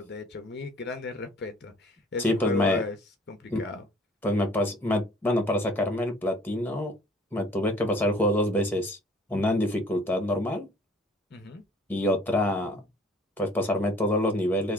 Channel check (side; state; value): both; normal; correlation 0.53